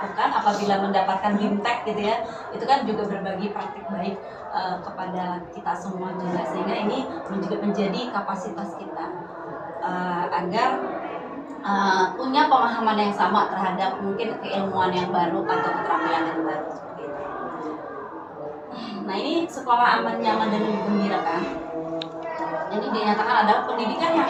apabila mendapatkan BIMTEK gitu ya, itu kan juga berbagi praktik baik kepada kita semua juga, sehingga ini juga menjadi kapasitas kita agar punya pemahaman yang sama terhadap mungkin keilmuan yang baru atau keterampilan yang baru seperti itu. Nah, ini sekolah aman, nyaman, dan menggembirakan. Ini dinyatakan adalah pendidikan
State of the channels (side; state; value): both; identical; correlation 1.00